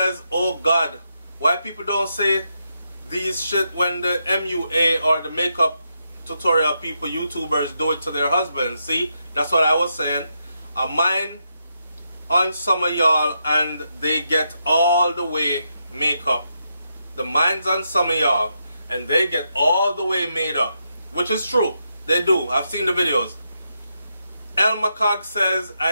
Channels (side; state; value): both; inverted; correlation -0.82